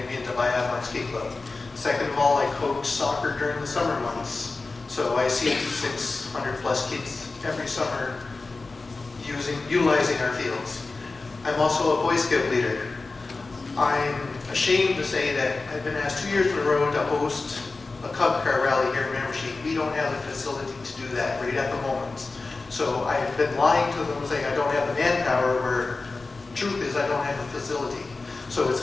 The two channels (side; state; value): right; quieter; 3.7 dB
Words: into biathlon ski club. Second of all, I coach soccer during the summer months. So I see 600 plus kids every summer utilizing our fields. I'm also a Boy Scout leader. I'm ashamed to say that I've been asked 2 years in a row to host a Cub Car rally here in Miramichi. We don't have the facility to do that right at the moment. So I've been lying to them saying I don't have the manpower, where truth is I don't have a facility. So it's